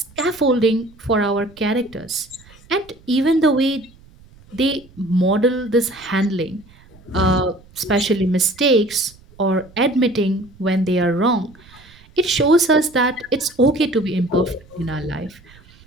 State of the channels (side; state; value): right; noise; rumble, 26 dB below the sound